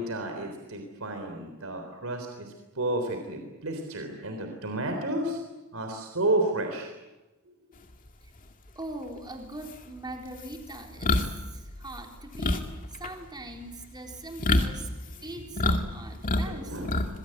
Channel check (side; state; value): both; normal; correlation 0.26